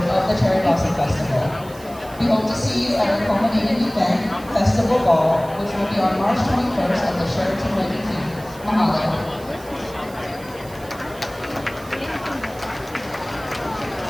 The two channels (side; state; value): right; noise; hiss, 21 dB below the sound